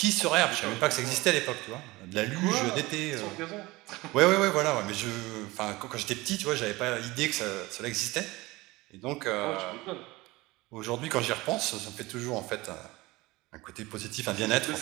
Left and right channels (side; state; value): left; quieter; 21.0 dB